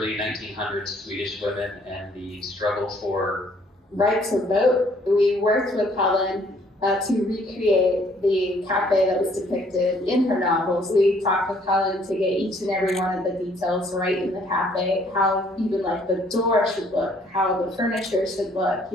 1900s Swedish women and the struggle for right to vote. We worked with Helen to recreate the cafe that was depicted in her novels. We talked with Helen to get each and every one of the details right in the cafe, how even like the door should look, how the furniture should look,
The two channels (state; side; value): normal; both; correlation 0.63